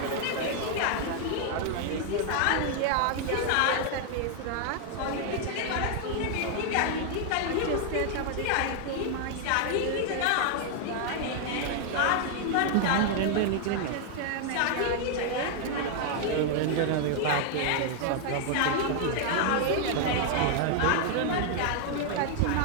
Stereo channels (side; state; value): both; different; correlation 0.00